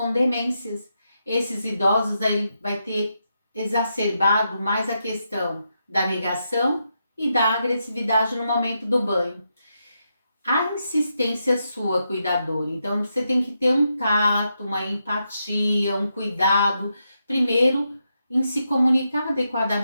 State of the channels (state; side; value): inverted; both; correlation -0.84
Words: demências. Esses idosos aí vai ter exacerbado mais a questão da negação e da agressividade no momento do banho. A insistência sua, cuidador, então você tem que ter um tato, uma empatia, um cuidado, primeiro em se comunicar